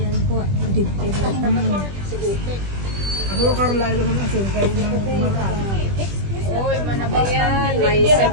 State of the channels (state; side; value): late; left; 20 ms